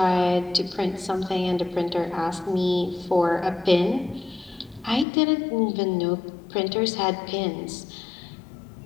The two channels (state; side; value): drops out; right; at 5.1 s